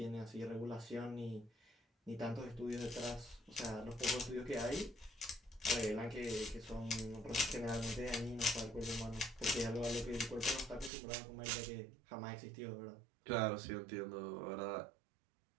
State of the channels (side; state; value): left; drops out; at 10.9 s